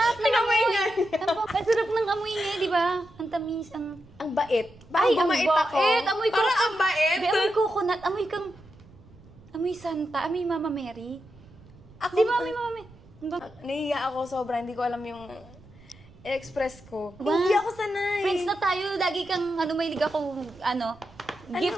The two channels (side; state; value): right; noise; rumble, 24 dB below the sound